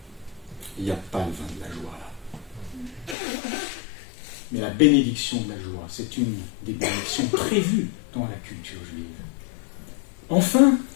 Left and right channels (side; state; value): right; drops out; at 3.2 s